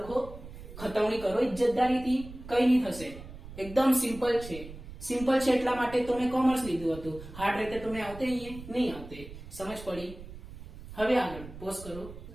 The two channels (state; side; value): noise; right; rumble, 14 dB below the sound